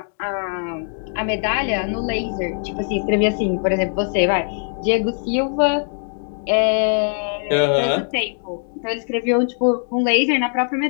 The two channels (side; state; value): right; silent; digital silence